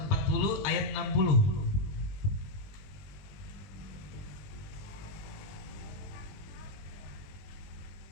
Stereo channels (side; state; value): right; late; 20 ms